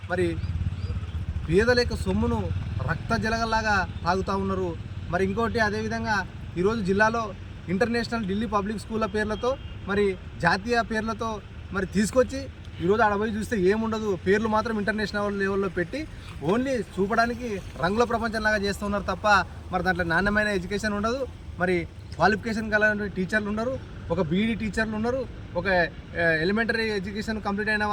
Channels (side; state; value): both; identical; correlation 1.00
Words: మరి పేదల యొక్క సొమ్మును రక్త జలగల్లాగా తాగుతూ ఉన్నారు. మరి ఇంకోటి అదేవిధంగా ఈరోజు జిల్లాలో ఇంటర్నేషనల్ ఢిల్లీ పబ్లిక్ స్కూళ్ళ పేర్లతో, మరి జాతీయ పేర్లతో మరి తీసుకొచ్చి ఈరోజు ఆడ పోయి చూస్తే ఏముండదు, పేర్లు మాత్రం ఇంటర్నేషనల్ లెవెల్లో పెట్టి ఓన్లీ చూపడానికి రంగుల ప్రపంచంలాగా చేస్తున్నారు తప్ప మరి దాంట్లో నాణ్యమైన ఎడ్యుకేషన్ ఉండదు. మరి క్వాలిఫికేషన్ కలిగిన టీచర్లు ఉన్నారు, ఒక బీఈడీ టీచర్లు ఉన్నారు, ఒక ఎలిమెంటరీ ఎడ్యుకేషన్ కంప్లీట్ అయిన